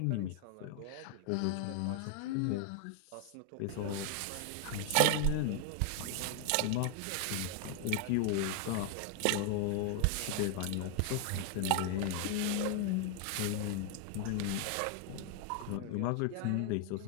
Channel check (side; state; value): both; different; correlation 0.00